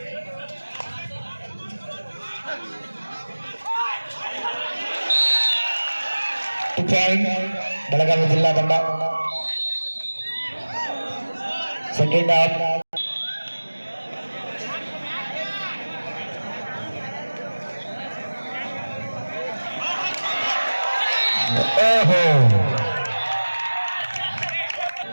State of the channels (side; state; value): both; inverted; correlation -1.00